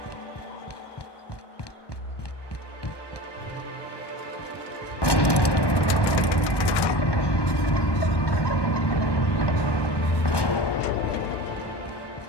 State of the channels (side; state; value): right; late; 1.2 ms